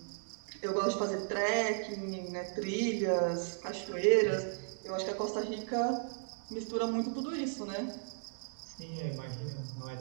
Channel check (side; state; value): left; silent; digital silence